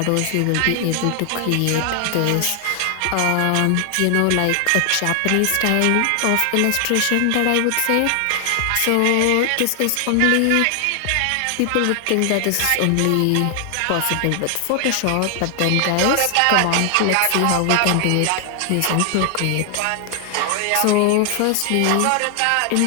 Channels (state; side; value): different; both; correlation 0.00